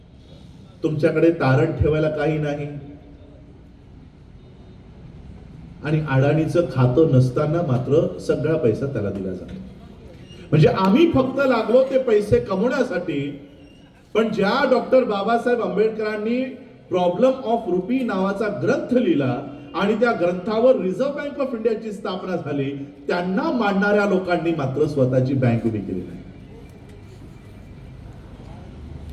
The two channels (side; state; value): both; identical; correlation 1.00